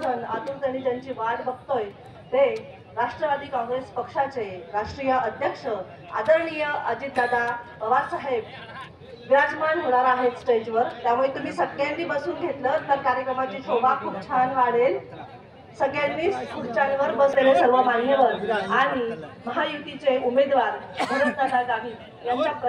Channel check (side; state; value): both; identical; correlation 1.00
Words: आतुरतेने ज्यांची वाट बघतोय ते राष्ट्रवादी काँग्रेस पक्षाचे राष्ट्रीय अध्यक्ष आदरणीय अजितदादा पवार साहेब विराजमान होणार आहेत स्टेजवर. त्यामुळे तुम्ही सगळ्यांनी बसून घेतलं तर कार्यक्रमाची शोभा खूप छान वाढेल. सगळ्यांनी खुर्च्यांवर बसलेले सर्व मान्यवर आणि महायुतीचे उमेदवार भरतदादा गावित यांच्या